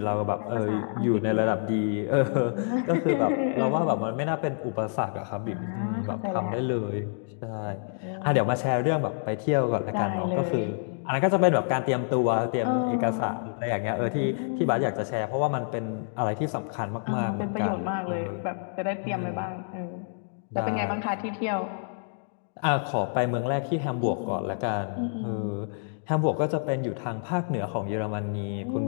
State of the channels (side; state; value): right; silent; digital silence